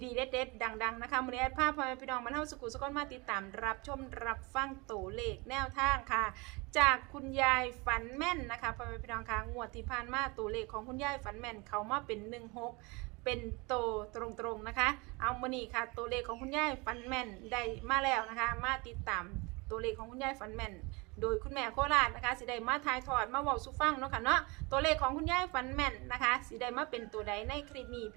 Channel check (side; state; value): left; quieter; 26.9 dB